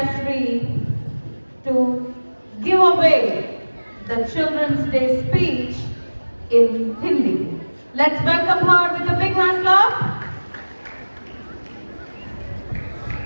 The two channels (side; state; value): both; inverted; correlation -1.00